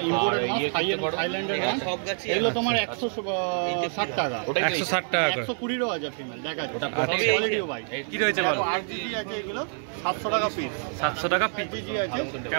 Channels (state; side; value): silent; left; 60 dB below the other